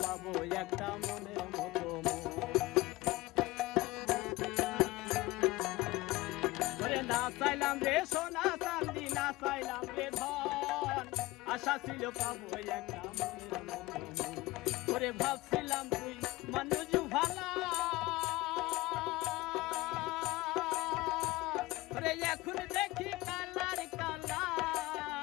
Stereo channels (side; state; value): right; quieter; 20.0 dB